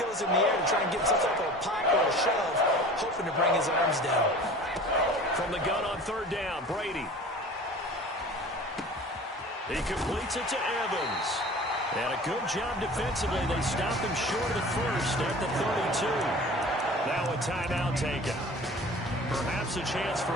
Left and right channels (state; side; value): normal; both; correlation 0.41